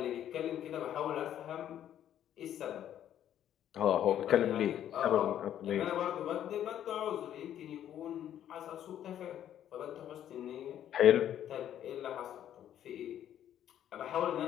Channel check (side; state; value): right; quieter; 10.8 dB